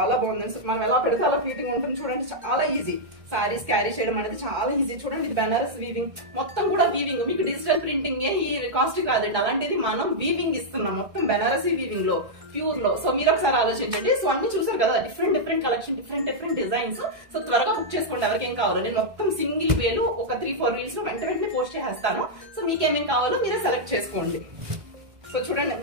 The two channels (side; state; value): left; late; 1.6 ms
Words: బాగుంది. సో మనం ఎలా పెడితే అలా ఫిట్టింగ్ ఉంటుంది చూడండి, చాలా ఈజీ. సారీస్ క్యారీ చేయడం అనేది చాలా ఈజీ. చూడండి ఇది బెనారస్ వీవింగ్, మొత్తం కూడా వీవింగ్. మీకు డిజిటల్ ప్రింటింగ్ ఈ కాస్ట్ కాదండి, అలాంటిది మనం వీవింగ్ ఇస్తున్నాం మొత్తం బెనారసీ వీవింగ్ లో. ప్యూర్ లో. సో మీరు ఒకసారి ఆలోచించండి. సో అన్ని చూసారు కదా, different collection, different designs. So త్వరగా బుక్ చేసుకోండి ఎవరికేం కావాలో. నేను మొత్తం సింగిల్ వేలు ఒక 3-4 రీల్స్ లో వెంటనే పోస్ట్ చేసేస్తాను. సో మీకేమేం కావాలో మీరే సెలెక్ట్ చేసుకోండి. సో చూడండి